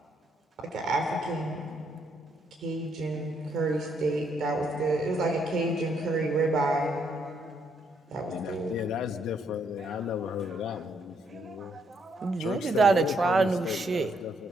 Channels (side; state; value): both; normal; correlation 0.73